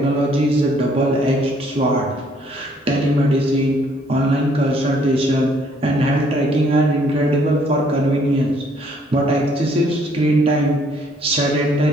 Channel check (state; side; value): normal; both; correlation 0.65